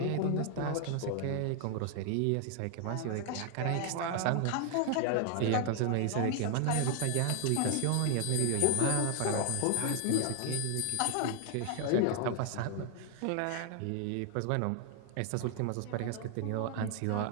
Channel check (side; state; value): both; different; correlation 0.00